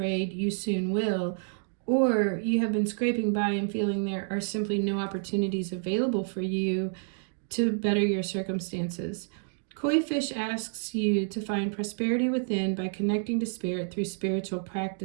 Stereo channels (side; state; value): left; silent; digital silence